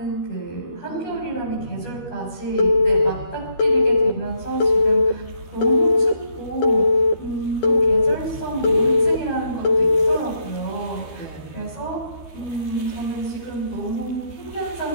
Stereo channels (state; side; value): late; right; 12 ms